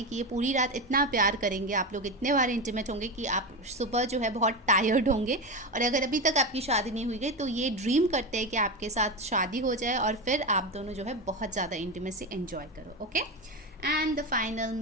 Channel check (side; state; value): both; normal; correlation 0.18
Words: कि ये पूरी रात इतना प्यार करेंगे, आप लोग इतने बार इंटीमेट होंगे कि आप सुबह जो है बहुत टायर्ड होंगे। और अगर अभी तक आपकी शादी नहीं हुई गई तो ये ड्रीम करते हैं कि आपके साथ शादी हो जाए और फिर आप दोनों जो है बहुत ज़्यादा इंटीमेसी एंजॉय करो, okay. And the final